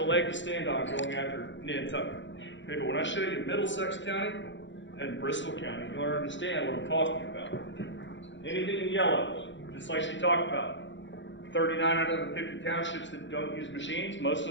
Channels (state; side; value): late; right; 0.54 ms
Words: leg to stand on going after Nantucket. Okay, but when I show you Middlesex County and Bristol County, you'll understand what I'm talking about. Anything in yellow, just like she talked about. 39 out of the 50 townships that don't use machines, most